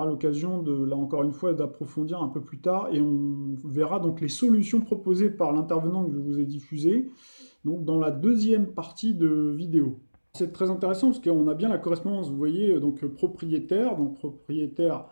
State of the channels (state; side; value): inverted; both; correlation -1.00